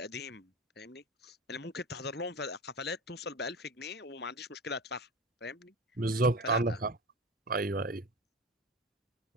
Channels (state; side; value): normal; both; correlation 0.29